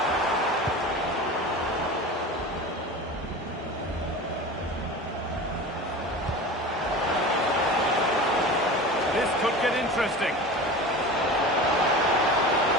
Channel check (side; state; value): both; normal; correlation 0.33